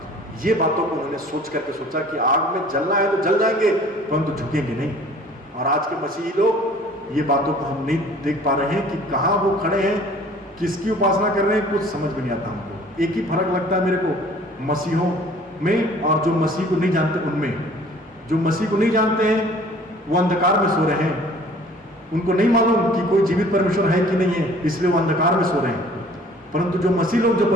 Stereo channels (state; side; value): normal; both; correlation 0.51